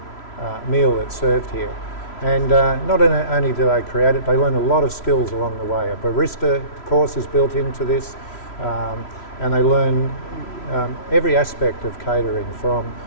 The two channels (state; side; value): late; right; 3.0 ms